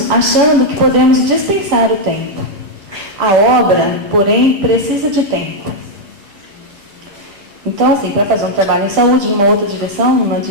achando que podemos dispensar o tempo. A obra, porém, precisa de tempo. Então, assim, para fazer um trabalho em saúde, numa outra direção, numa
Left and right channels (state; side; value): late; left; 10 ms